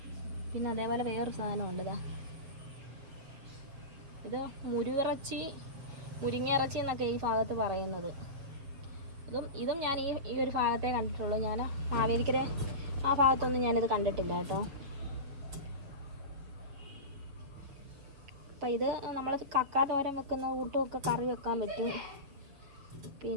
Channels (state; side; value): late; left; 7.1 ms